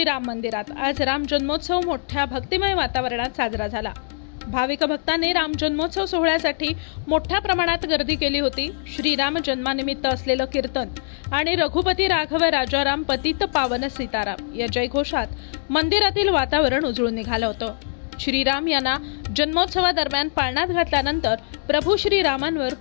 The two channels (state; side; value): silent; right; digital silence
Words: मंदिरात आज राम जन्मोत्सव मोठ्या भक्तिमय वातावरणात साजरा झाला। भाविक भक्तांनी राम जन्मोत्सव सोहळ्यासाठी मोठ्या प्रमाणात गर्दी केली होती। श्रीराम जन्मानिमित्त असलेलं कीर्तन आणि रघुपती राघव राजाराम पतित पावन सीताराम या जयघोषात मंदिरातील वातावरण उजळून निघालं होतं। श्रीराम यांना जन्मोत्सवादरम्यान पाळण्यात घातल्यानंतर प्रभू श्रीरामांवर